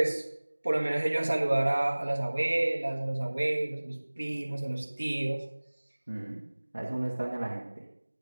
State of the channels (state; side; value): inverted; both; correlation -1.00